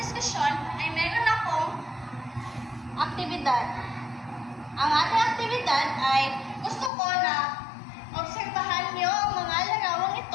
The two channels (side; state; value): right; drops out; at 6.9 s